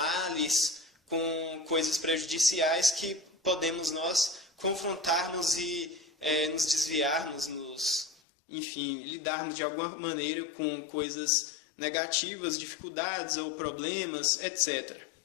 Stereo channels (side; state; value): right; drops out; at 8.2 s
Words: com coisas prejudiciais que podemos nós confrontarmos e nos desviarmos, enfim, lidarmos de alguma maneira com coisas negativas, dificuldades ou problemas, etc.